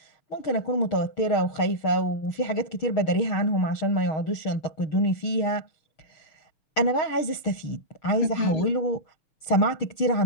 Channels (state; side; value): late; right; 6.5 ms